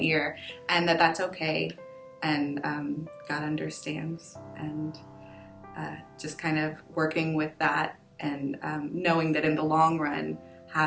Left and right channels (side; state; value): both; identical; correlation 1.00